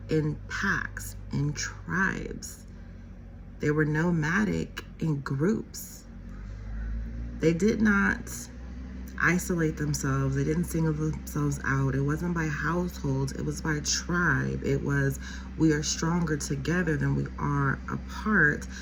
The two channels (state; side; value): identical; both; correlation 1.00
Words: in packs, in tribes. They were nomadic in groups. They did not isolate themselves. They didn't single themselves out. It wasn't by households. It was by tribe. It was, we are stronger together than we are apart.